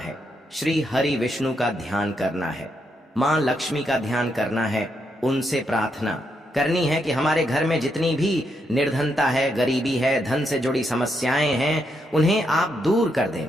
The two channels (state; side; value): normal; both; correlation 0.80